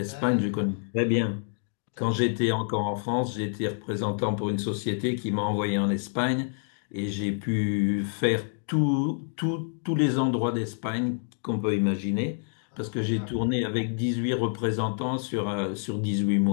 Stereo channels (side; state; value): right; silent; digital silence